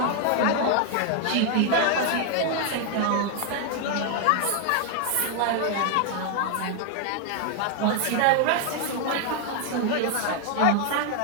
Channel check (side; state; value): both; different; correlation 0.01